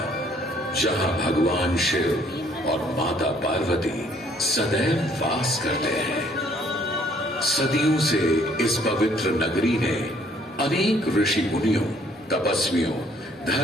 जहां भगवान शिव और माता पार्वती सदैव वास करते हैं। सदियों से इस पवित्र नगरी ने अनेक ऋषि मुनियों, तपस्वियों,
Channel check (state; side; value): normal; both; correlation 0.63